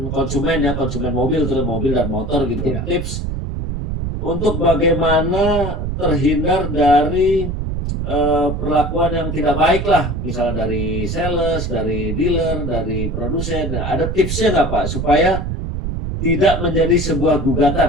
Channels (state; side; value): noise; right; rumble, 3 dB below the sound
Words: konsumen ya, konsumen mobil, terus mobil dan motor gitu. Ya. Tips untuk bagaimana terhindar dari perlakuan yang tidak baik lah, misalnya dari sales, dari dealer, dari produsen. Nah, ada tipsnya nggak Pak supaya tidak menjadi sebuah